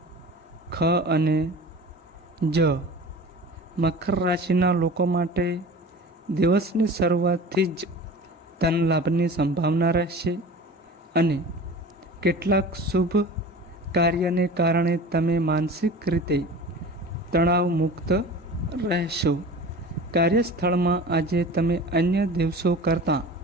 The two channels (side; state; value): both; normal; correlation 0.38